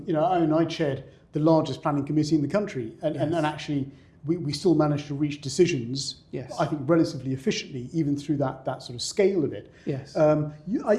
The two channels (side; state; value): both; identical; correlation 1.00